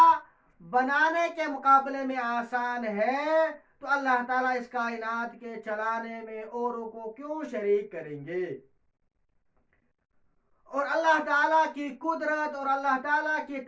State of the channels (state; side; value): identical; both; correlation 1.00